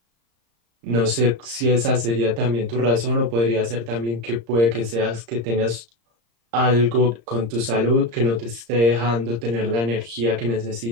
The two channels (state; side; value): late; left; 34 ms